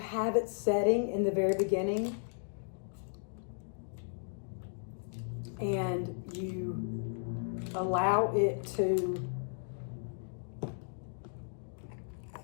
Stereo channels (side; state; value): right; silent; digital silence